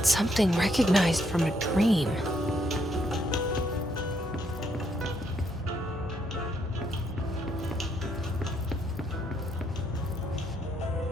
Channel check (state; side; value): normal; both; correlation 0.74